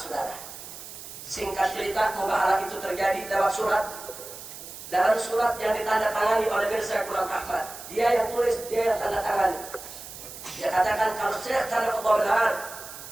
Singkat cerita, mubahalah itu terjadi lewat surat. Dalam surat yang ditandatangani oleh Mirza Ghulam Ahmad, dia yang tulis, dia yang tanda tangani. Dia katakan, kalau Syekh Sana'ullah benar,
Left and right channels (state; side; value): noise; right; hiss, 13 dB below the sound